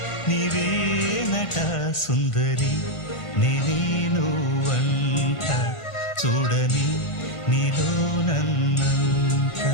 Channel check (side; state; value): right; late; 1.4 ms